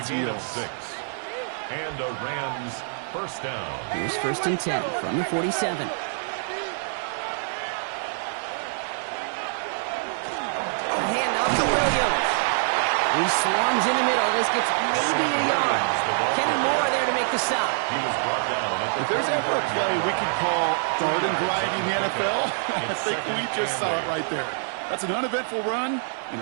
heels. 6. And a Rams 1st down. Here's 1st and 10 from the 47. He swarms in the middle. This gets maybe a yard. Kenny Moore there to make the stop. If there's ever a play we can call garden variety in the NFL, I think we just saw it right there. That's an uneventful run and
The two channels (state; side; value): silent; left; 58 dB below the other